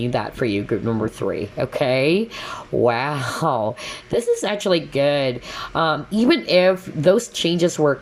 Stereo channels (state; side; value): identical; both; correlation 1.00